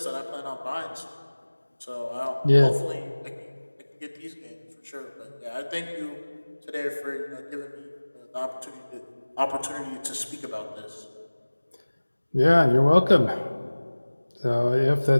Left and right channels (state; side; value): inverted; both; correlation -1.00